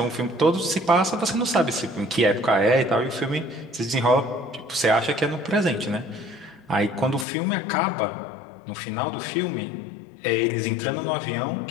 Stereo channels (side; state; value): right; drops out; at 7.2 s